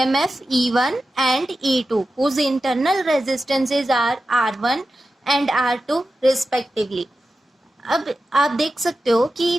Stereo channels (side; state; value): both; normal; correlation 0.92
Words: E1 एंड E2 whose internal resistances are R1 and R2 respectively। अब आप देख सकते हो कि